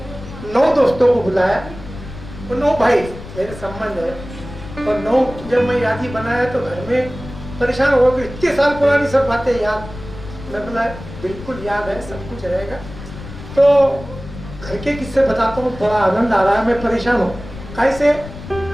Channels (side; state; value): left; noise; rumble, 14 dB below the sound